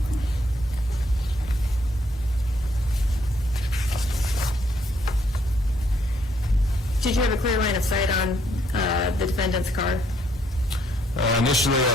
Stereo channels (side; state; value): both; normal; correlation 0.70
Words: Did you have a clear line of sight on the defendant's car? Initially, I